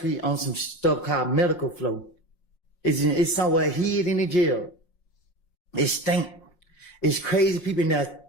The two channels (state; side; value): late; right; 5.6 ms